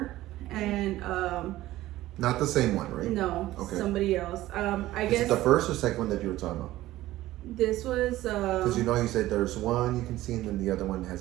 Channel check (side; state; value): left; quieter; 15.8 dB